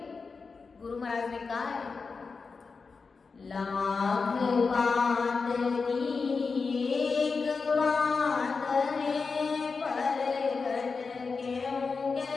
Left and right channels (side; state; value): right; quieter; 4.7 dB